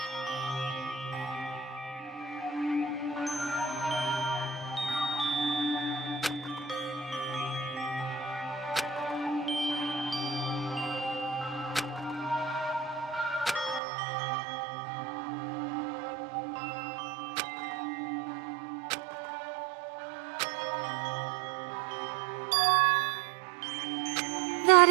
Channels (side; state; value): left; drops out; at 13.8 s